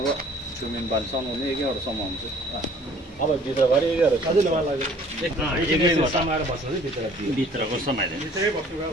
सुमिन बाल समाउने एकैवटा समाउँछ अब भित्रभरि सजिलो मलाई लाग्यो समाएर बस्छ नि भित्रको समाएर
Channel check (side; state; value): both; normal; correlation 0.54